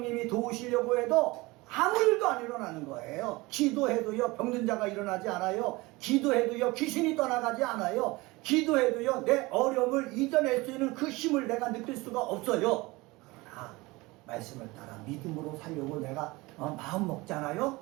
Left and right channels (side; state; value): left; quieter; 22.4 dB